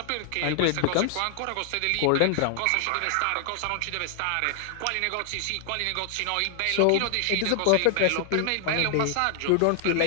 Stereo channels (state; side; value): different; both; correlation 0.00